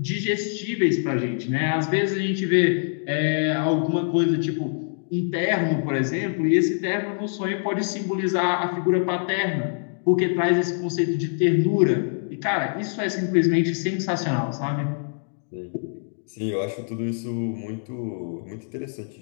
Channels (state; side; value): silent; right; digital silence